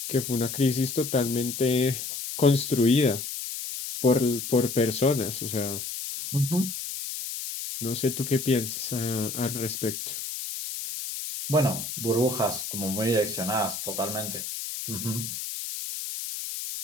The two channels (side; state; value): left; noise; hiss, 6 dB below the sound